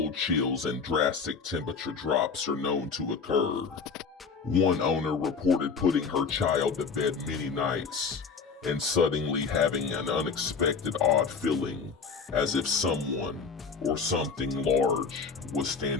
chills and drastic temperature drops are known to occur. One owner reported putting her child to bed many nights and suddenly having an unexpected odd feeling as if someone or something large was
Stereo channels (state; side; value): quieter; right; 5.3 dB